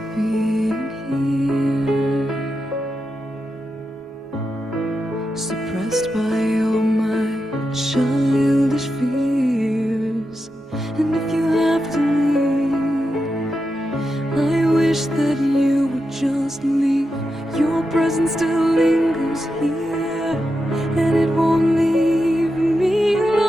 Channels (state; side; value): normal; both; correlation 0.88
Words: being here, suppressed by all my childish fears. And if you have to leave, I wish that you would just leave. Your presence still lingers here, and it won't leave me